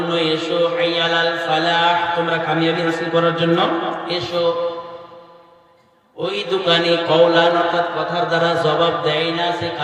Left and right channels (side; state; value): both; identical; correlation 1.00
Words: এসো, হাইয়া আলাল ফালাহ তোমরা কামিয়াবি হাসিল করার জন্য এসো। ওই দোকানি কওলান অর্থাৎ কথার দ্বারা জবাব দেয় না, সে